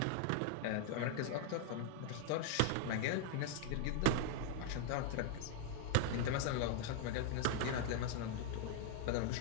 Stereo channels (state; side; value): different; both; correlation 0.00